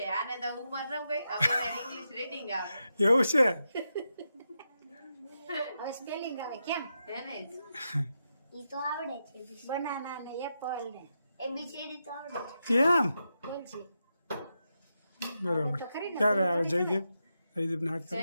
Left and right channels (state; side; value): inverted; both; correlation -0.86